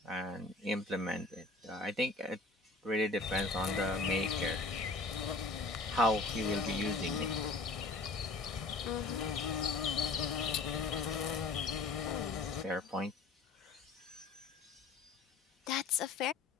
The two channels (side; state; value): right; quieter; 3.7 dB